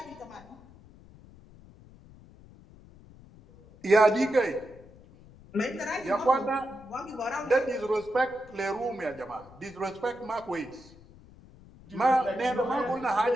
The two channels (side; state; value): left; noise; rumble, 22 dB below the sound